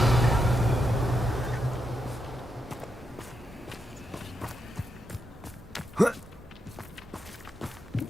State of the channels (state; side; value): normal; both; correlation 0.83